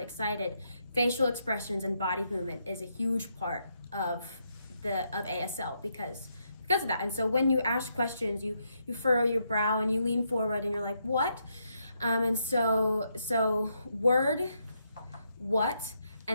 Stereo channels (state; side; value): inverted; both; correlation -0.79